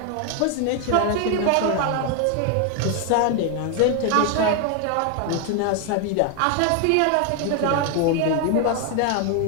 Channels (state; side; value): different; both; correlation 0.01